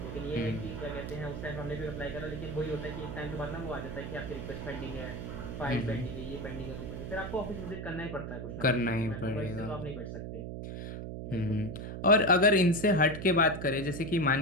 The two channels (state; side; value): noise; right; hum, 7 dB below the sound